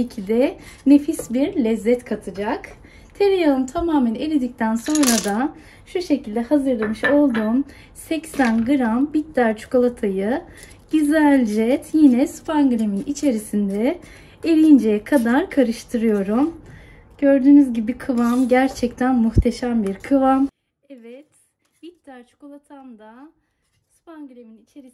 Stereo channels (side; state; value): both; identical; correlation 1.00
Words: ki de nefis bir lezzet katacak. Tereyağım tamamen eridikten sonra da şu şekilde hazırlamış olduğum 80 gram bitter çikolatayı güzelce yine spanglemin içerisinde eriyinceye kadar karıştırıyorum. Gördüğünüz gibi kıvam gerçekten muhteşem bir kıvam. Evet, bitter çikolatam da spanglemin